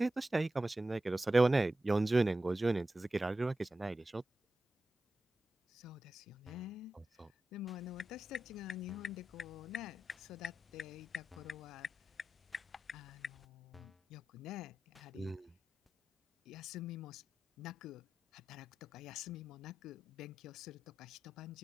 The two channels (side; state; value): both; normal; correlation 0.93